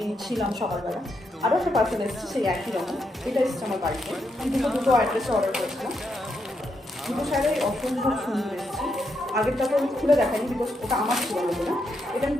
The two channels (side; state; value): both; normal; correlation 0.80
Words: ছিলাম সকালবেলা। আরও একটা পার্সেল এসেছে সেই একই রকম, এটা এসেছে আমার বাড়িতে। আমি দুটো অ্যাড্রেসে অর্ডার করেছিলাম। দুটো শাড়ি অসম্ভব সুন্দর এসেছে। আগেরটা তো আমি খুলে দেখাইনি, বিকজ ওটা আমার ছিল না। এটা আমি